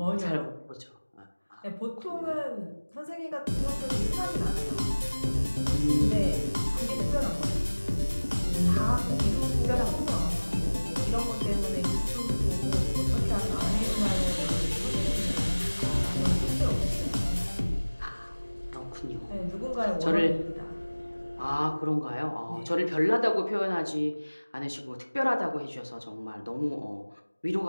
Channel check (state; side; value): inverted; both; correlation -1.00